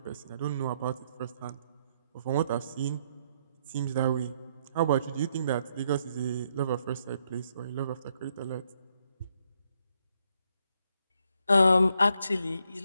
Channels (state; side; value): inverted; both; correlation -0.75